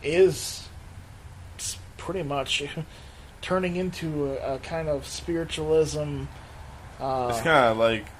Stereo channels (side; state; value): both; identical; correlation 1.00